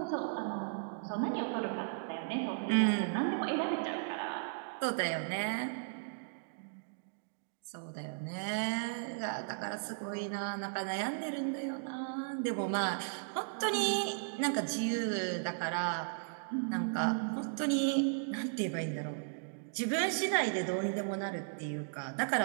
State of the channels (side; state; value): left; silent; digital silence